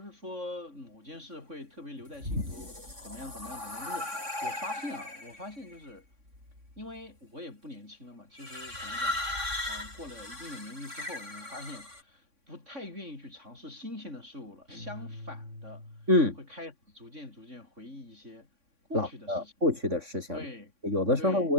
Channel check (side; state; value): left; late; 3.6 ms